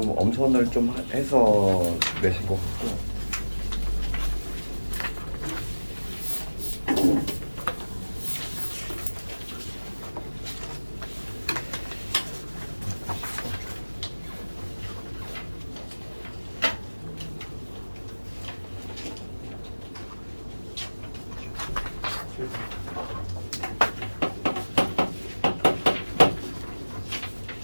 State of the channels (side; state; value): both; inverted; correlation -1.00